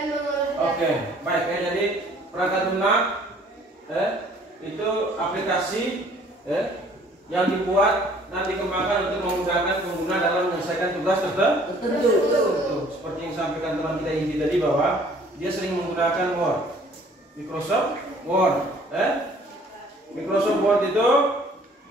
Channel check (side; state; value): both; normal; correlation 0.56